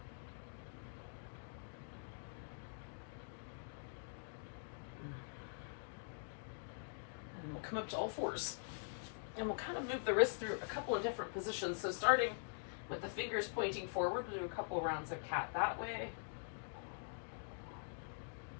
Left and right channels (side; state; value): right; silent; digital silence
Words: And we'll come up to all fours. And we'll kind of move the wrist through a couple of different positions. So starting with the fingers pointing forward, we'll do a couple rounds of cat that way.